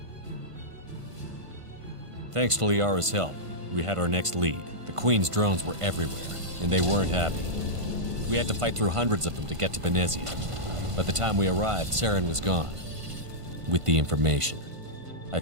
Thanks to Liara's help, we had our next lead. The Queen's drones were everywhere, and they weren't happy. We had to fight through hundreds of them to get to Benezia. By the time we arrived, Saren was gone. With the information. I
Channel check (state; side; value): late; left; 1.5 ms